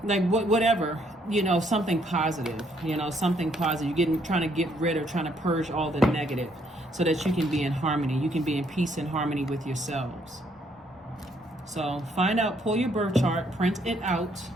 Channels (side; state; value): both; normal; correlation 0.69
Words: like whatever, something positive. Something positive. You're trying to get rid of, trying to purge all the negative, so that you can be in harmony. You can be in peace and harmony with yourselves. So find out, pull your birth chart, print it out.